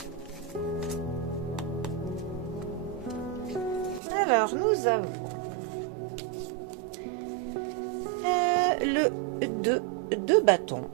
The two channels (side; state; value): left; drops out; at 4.0 s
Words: Alors, nous avons le 2 de bâton